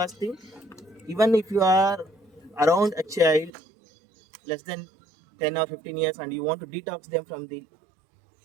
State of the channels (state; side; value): drops out; left; at 3.5 s